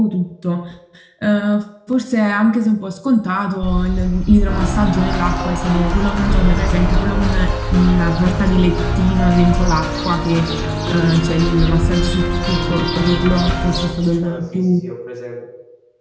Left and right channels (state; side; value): identical; both; correlation 1.00